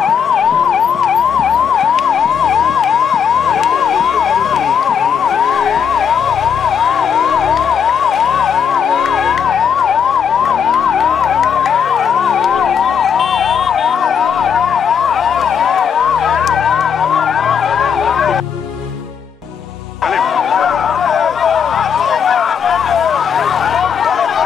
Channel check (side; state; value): right; quieter; 7.3 dB